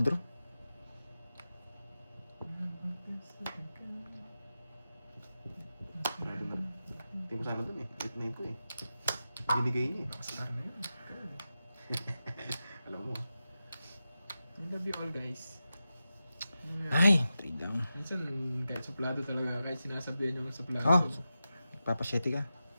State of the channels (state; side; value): inverted; both; correlation -0.91